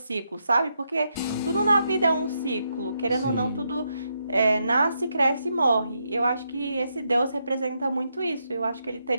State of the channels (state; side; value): inverted; both; correlation -0.81